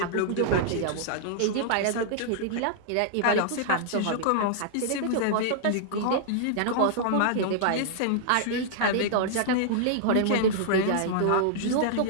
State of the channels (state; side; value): different; both; correlation -0.01